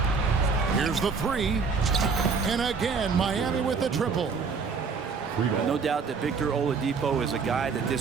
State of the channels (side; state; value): left; quieter; 5.1 dB